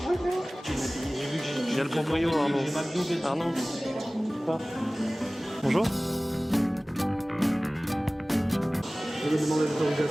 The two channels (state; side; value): normal; both; correlation 0.98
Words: Bonjour. J'ai le proprio Arnaud. Bonjour. Je vais demander